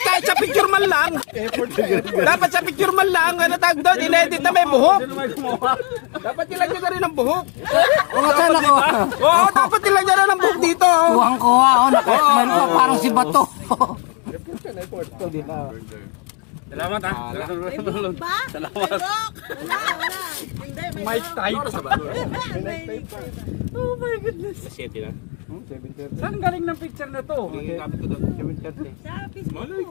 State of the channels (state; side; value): quieter; right; 35.7 dB